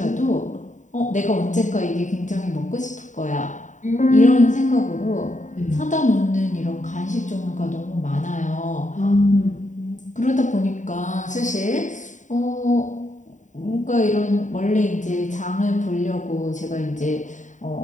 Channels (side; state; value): right; late; 0.36 ms